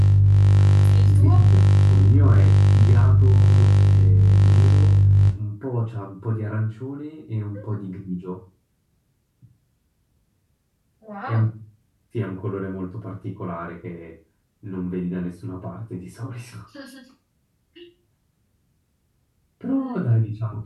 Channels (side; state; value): both; identical; correlation 1.00